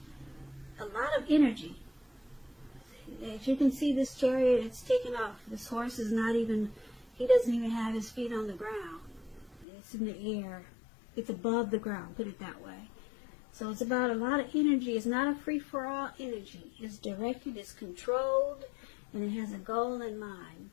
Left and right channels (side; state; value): right; drops out; at 9.7 s